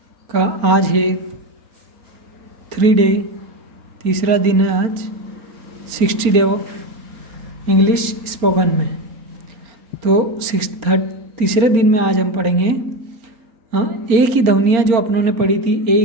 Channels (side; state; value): left; late; 4.4 ms